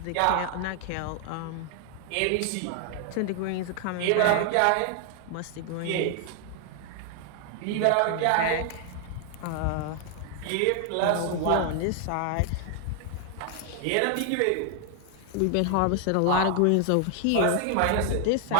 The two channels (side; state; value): both; different; correlation 0.00